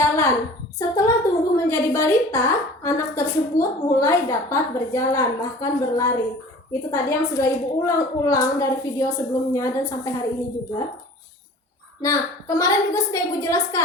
Setelah tumbuh menjadi balita, anak tersebut mulai dapat berjalan, bahkan berlari. Itu tadi yang sudah Ibu ulang-ulang dari video sebelumnya dan sampai hari ini juga. Nah, kemarin juga sudah Ibu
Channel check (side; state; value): both; normal; correlation 0.44